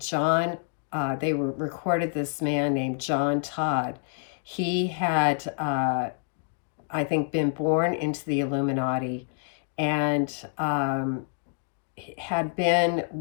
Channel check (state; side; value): silent; right; digital silence